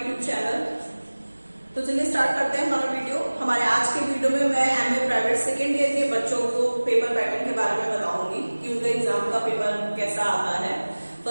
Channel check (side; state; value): both; inverted; correlation -1.00